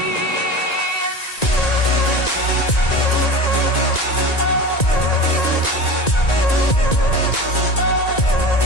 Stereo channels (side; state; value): right; late; 1.9 ms